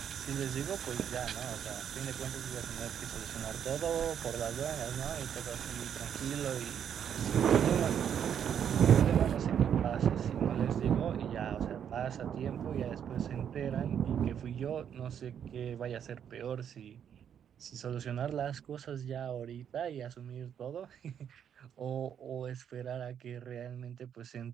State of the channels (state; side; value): quieter; left; 8.7 dB